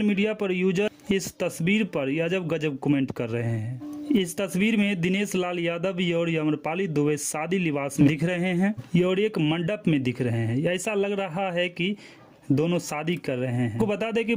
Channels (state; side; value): identical; both; correlation 1.00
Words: मीडिया पर यूजर इस तस्वीर पर अजब गजब कमेंट कर रहे हैं। इस तस्वीर में दिनेश लाल यादव और अम्रपाली दुबे शादी लिबास में दिख रहे हैं और एक मंडप में दिख रहे हैं। ऐसा लग रहा है कि दोनों शादी कर रहे हैं। आपको बता दें कि